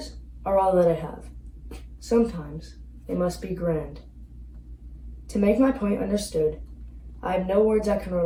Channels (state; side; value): identical; both; correlation 1.00